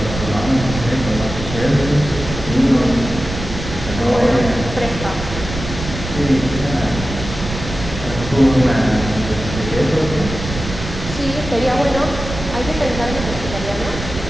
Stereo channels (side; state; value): right; noise; rumble, 8 dB below the sound